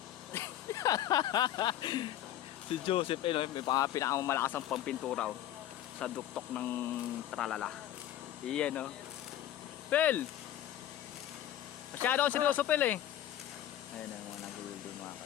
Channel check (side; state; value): right; quieter; 12.1 dB